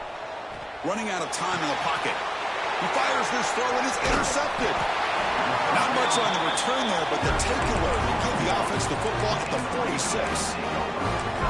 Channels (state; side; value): identical; both; correlation 1.00